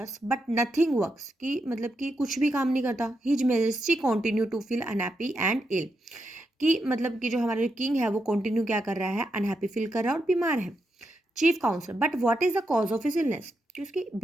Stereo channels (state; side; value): normal; both; correlation 0.84